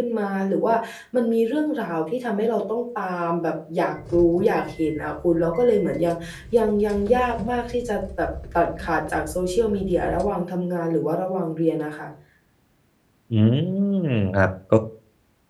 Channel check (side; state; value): both; identical; correlation 1.00